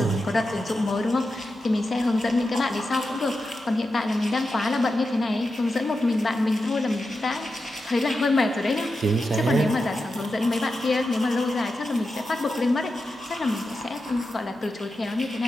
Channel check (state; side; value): normal; both; correlation 0.90